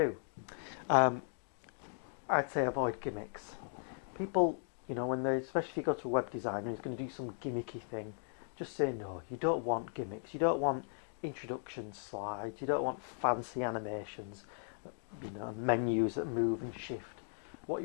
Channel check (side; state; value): right; silent; digital silence